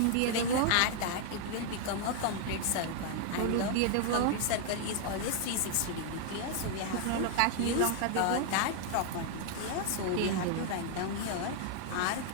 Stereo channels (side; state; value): both; different; correlation 0.00